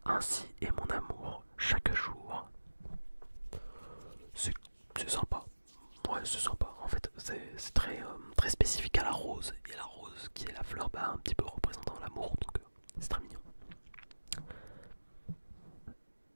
Ainsi est mon amour chaque jour. C'est sympa. Ouais, c'est sympa. En fait, c'est très spécifique à la rose. Et la rose, qui est la fleur, bah, un petit peu représentant l'amour, donc c'est très mignon.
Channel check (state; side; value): inverted; both; correlation -1.00